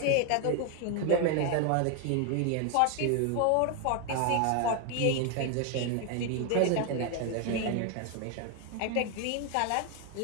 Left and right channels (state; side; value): different; both; correlation 0.01